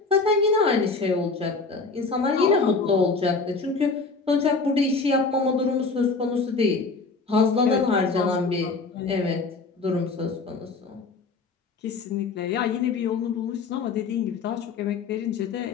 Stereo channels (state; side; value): quieter; right; 4.2 dB